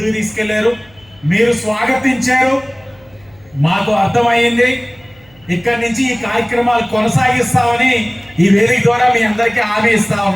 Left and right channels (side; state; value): left; noise; hum, 30 dB below the sound